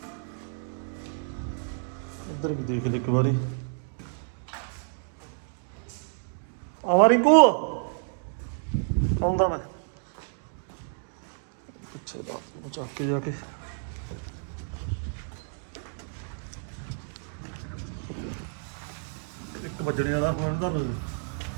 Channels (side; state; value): left; silent; 58 dB below the other